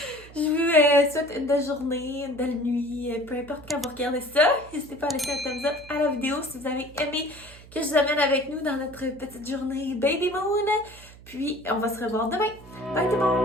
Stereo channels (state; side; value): noise; right; hum, 20 dB below the sound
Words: Je vous souhaite une belle journée, une belle nuit, peu importe quand vous regardez ça. N'hésitez pas à laisser un thumbs up à la vidéo si vous avez aimé que je vous amène avec nous dans notre petite journée Baby Moon. Puis on va se revoir demain. Bye tout le